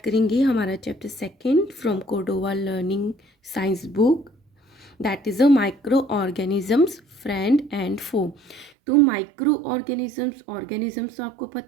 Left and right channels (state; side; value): drops out; left; at 8.7 s